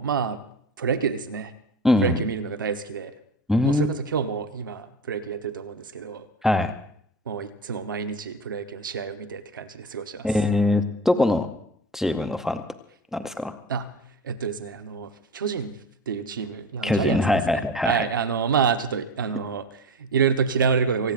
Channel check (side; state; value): both; normal; correlation 0.29